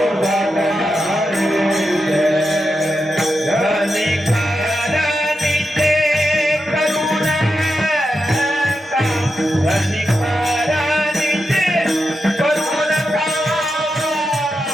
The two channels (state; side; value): normal; both; correlation 0.87